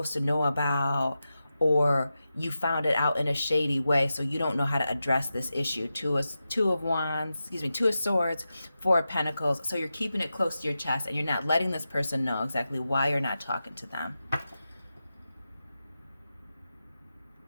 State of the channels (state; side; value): inverted; both; correlation -0.91